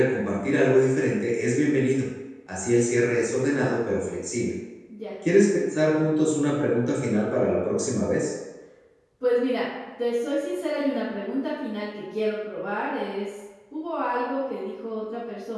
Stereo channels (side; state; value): both; identical; correlation 1.00